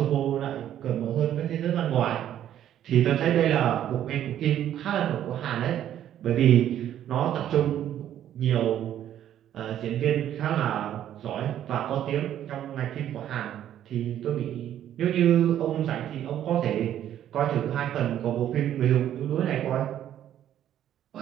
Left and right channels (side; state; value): left; quieter; 11.1 dB